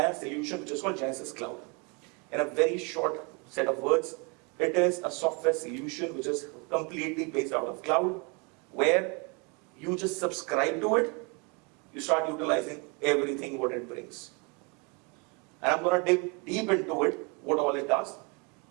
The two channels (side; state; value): left; quieter; 32.1 dB